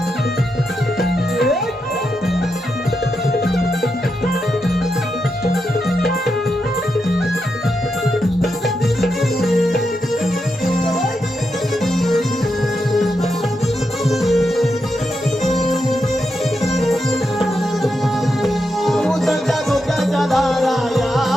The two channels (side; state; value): both; normal; correlation 0.85